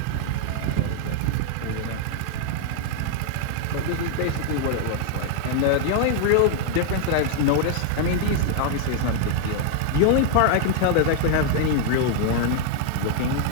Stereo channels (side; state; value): both; different; correlation 0.00